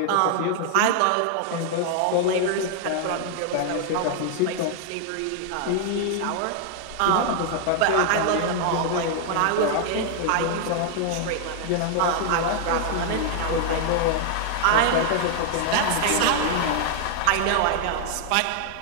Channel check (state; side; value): different; both; correlation 0.00